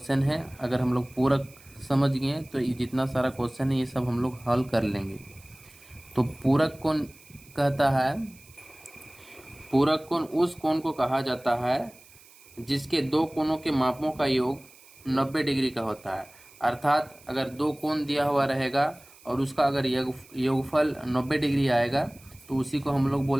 है, अगर हम लोग पूरक समझ गए तो ये जितना सारा क्वेश्चन है ये सब हम लोग हल कर लेंगे। तो पूरक कोण कहता है, पूरक कोण उस कोण को कहा जाता है जिसके दो कोणों के मापों का योग 90 डिग्री का होता है। अर्थात अगर दो कोण दिया हुआ रहेगा और उसका अगर योगफल 90 डिग्री आएगा तो उसी को हम लोग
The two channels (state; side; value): noise; right; hiss, 24 dB below the sound